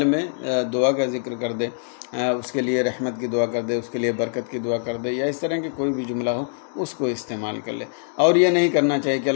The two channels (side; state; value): right; silent; digital silence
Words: میں دعا کا ذکر کر دے، اس کے لیے رحمت کی دعا کر دے، اس کے لیے برکت کی دعا کر دے، یا اس طرح کی کوئی بھی جملہ ہو اس کو استعمال کر لے۔ اور یہ نہیں کرنا چاہیے کہ